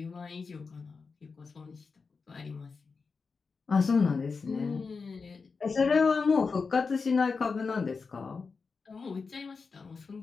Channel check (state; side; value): quieter; right; 4.8 dB